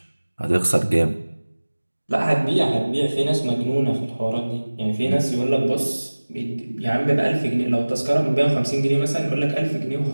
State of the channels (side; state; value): both; inverted; correlation -1.00